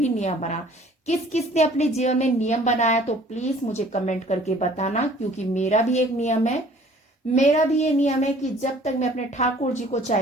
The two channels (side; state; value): both; normal; correlation 0.53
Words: नियम बनाना। किस किस ने अपने जीवन में नियम बनाया तो प्लीज मुझे कमेंट करके बताना, क्योंकि मेरा भी एक नियम है। मेरा भी ये नियम है कि जब तक मैं अपने ठाकुर जी को